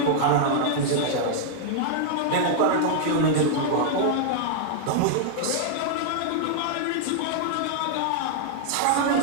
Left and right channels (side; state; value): both; different; correlation -0.01